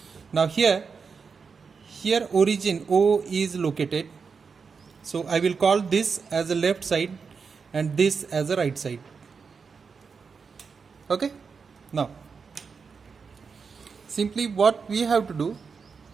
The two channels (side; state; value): left; quieter; 5.4 dB